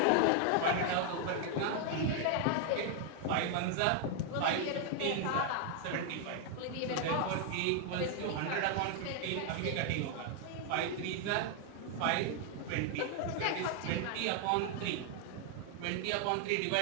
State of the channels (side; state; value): both; different; correlation 0.00